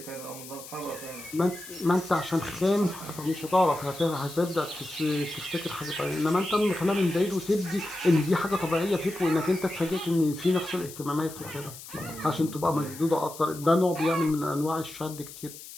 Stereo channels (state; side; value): noise; left; hiss, 15 dB below the sound